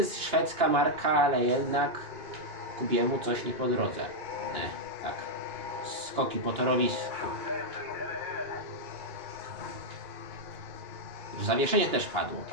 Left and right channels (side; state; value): left; late; 2.9 ms